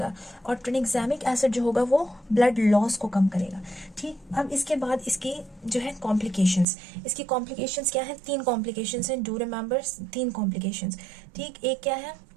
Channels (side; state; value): left; drops out; at 6.7 s